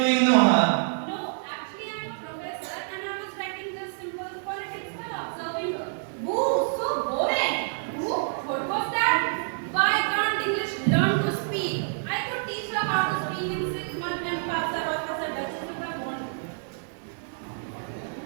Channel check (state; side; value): silent; left; digital silence